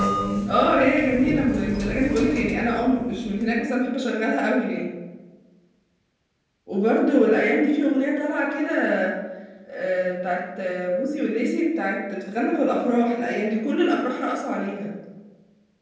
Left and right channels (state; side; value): identical; both; correlation 1.00